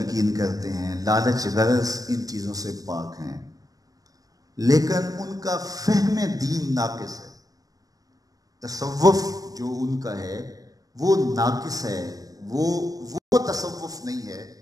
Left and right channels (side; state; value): left; late; 0.18 ms